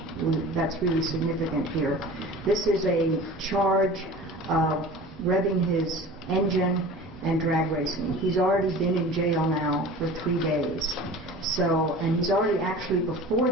that's really significant here. This is a charge of revving his engine and drag racing. He's already been in jail now for 3 days. So, and he's already actually before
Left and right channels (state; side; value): normal; both; correlation 0.39